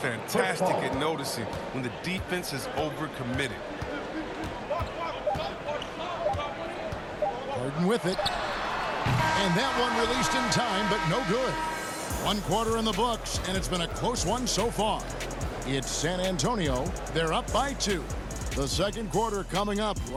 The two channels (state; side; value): identical; both; correlation 1.00